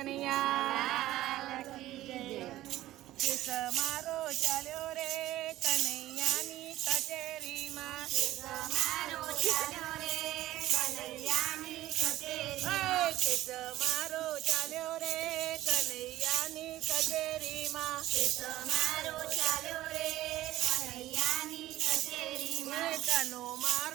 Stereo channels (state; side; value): quieter; left; 15.2 dB